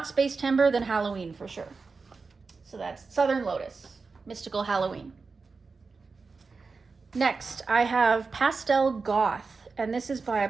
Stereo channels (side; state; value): left; quieter; 4.4 dB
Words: Spacetember, then Halloween for sure. So that's Southern Lotus, Mystical Halloween. Next, I have Pastel Goth. And this is by, I